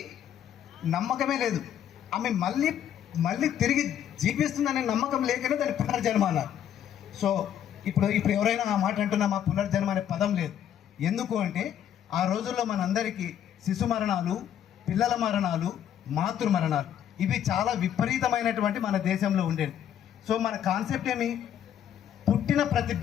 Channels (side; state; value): right; quieter; 10.0 dB